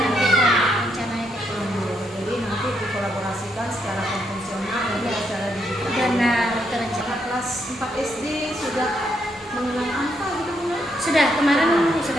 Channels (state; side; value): normal; both; correlation 0.77